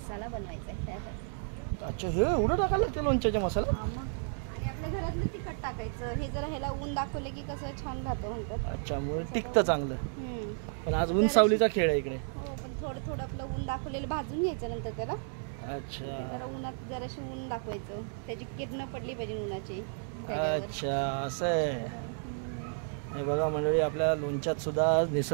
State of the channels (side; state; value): left; silent; 56 dB below the other